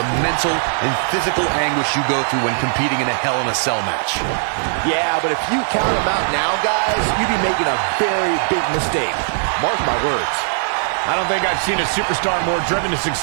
mental and physical anguish you go through when competing in a Hell in a Cell match. Yeah, but if you count them out now, guys, you'd be making a very big mistake. Mark my words. I don't think I've seen a superstar more driven to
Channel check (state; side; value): silent; left; 65 dB below the other